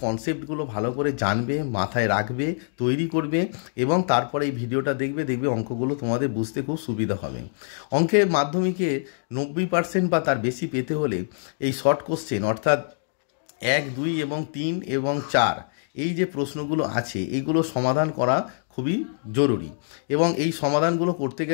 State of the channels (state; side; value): silent; right; digital silence